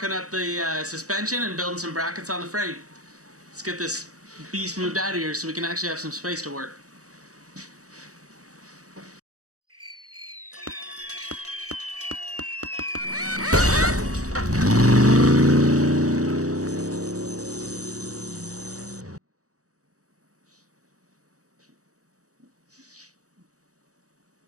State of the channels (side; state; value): left; late; 0.66 ms